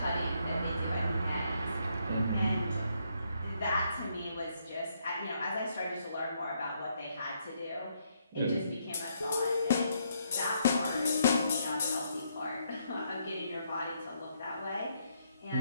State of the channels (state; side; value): inverted; both; correlation -0.74